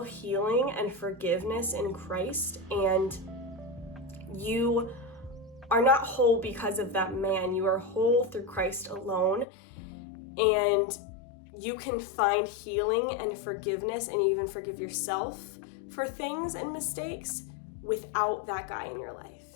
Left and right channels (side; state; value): right; drops out; at 9.5 s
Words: healing and forgiveness in Christ, and you are not whole because of that man. You are whole through Christ alone, and you can find healing and forgiveness and even forgive yourself for things and mistakes without that guy in your life,